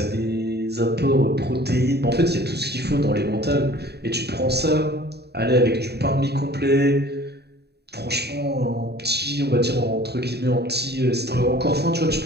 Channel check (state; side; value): late; left; 0.48 ms